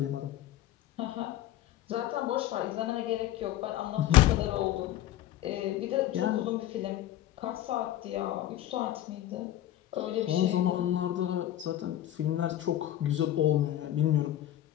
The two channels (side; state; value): right; quieter; 13.1 dB